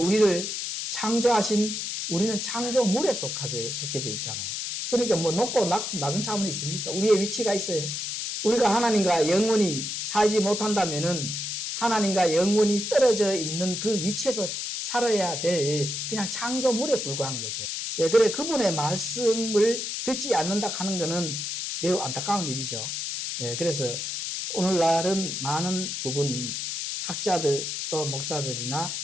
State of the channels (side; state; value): left; noise; hiss, 4 dB below the sound